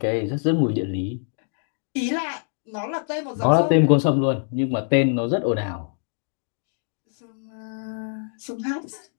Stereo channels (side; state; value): right; silent; digital silence